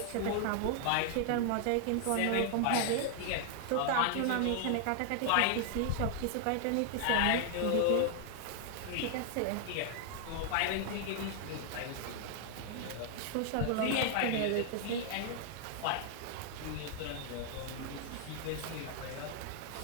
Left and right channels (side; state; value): both; different; correlation 0.00